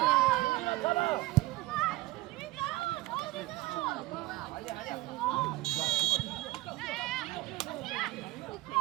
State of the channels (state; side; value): quieter; left; 19.1 dB